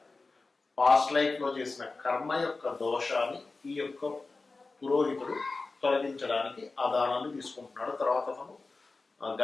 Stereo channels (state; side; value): quieter; right; 3.7 dB